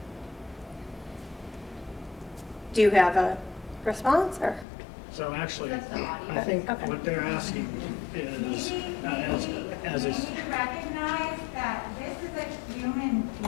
Do you have a response, or? So actually, I think what they're asking is, as is, We need to recognize that this is a human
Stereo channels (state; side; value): drops out; right; at 4.7 s